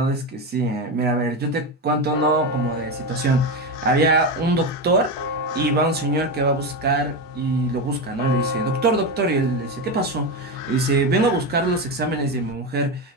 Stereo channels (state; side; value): normal; both; correlation 0.15